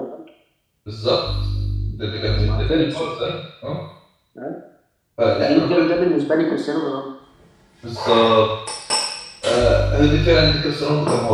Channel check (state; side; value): identical; both; correlation 1.00